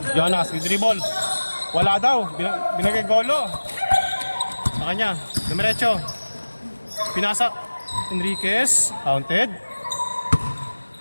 Jonas, with dribble. Wala daw. Binagay golo. Sa kanya. Dumiretso. Pinasa. Enriquez. Counted.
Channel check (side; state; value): both; inverted; correlation -1.00